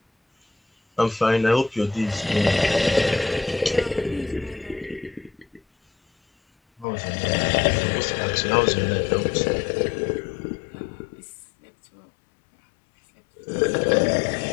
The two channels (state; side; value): drops out; right; at 6.9 s